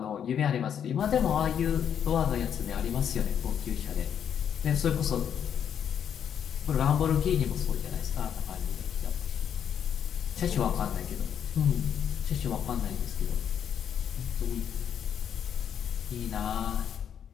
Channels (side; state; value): right; quieter; 8.6 dB